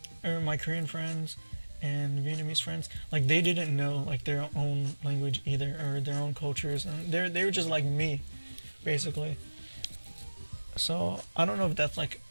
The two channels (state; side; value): inverted; both; correlation -1.00